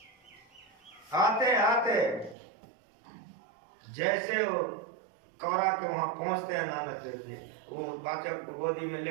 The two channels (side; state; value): left; drops out; at 2.4 s